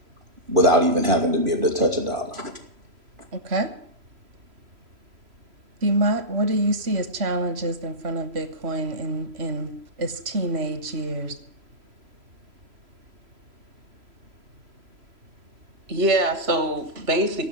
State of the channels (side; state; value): left; late; 3.0 ms